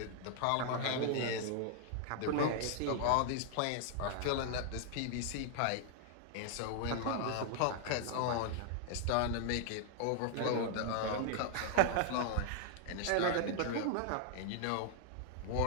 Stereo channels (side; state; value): both; different; correlation 0.00